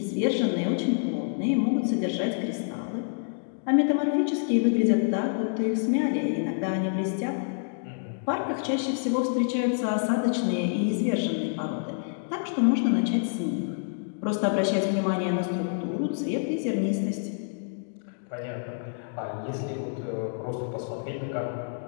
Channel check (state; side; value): silent; right; digital silence